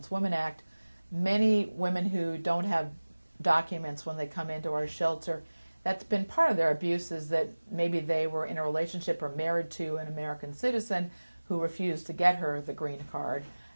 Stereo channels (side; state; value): both; inverted; correlation -1.00